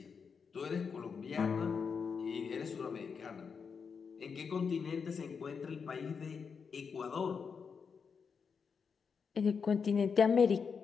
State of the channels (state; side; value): quieter; right; 5.9 dB